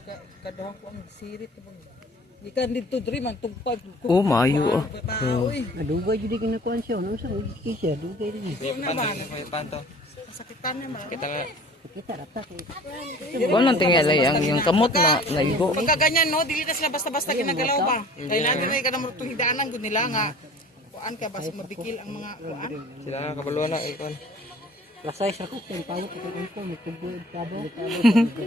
kaduhan ko ang sirit bang. Gikan dito diri man tugpag. Oh, maayo oh. Uy, Dugay jud kinukuan siya. Ano sa siya? Dugay din. panto. Sakitan na ba? Kita nga. Kita rata kay. Kung nang tingala yung kamot na naigo. Pagka ganyan no, dili na sila basta-basta ginagalaw ba. Kaya natin ay kanang itong hidaanan gud nila nga. kuan kaya basta mabigil ang mga kuan. Sila nga kabaluan na ikon. Lasay sa ko, kung tawag ko ko, may tubo, tabo.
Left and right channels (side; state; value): both; normal; correlation 0.47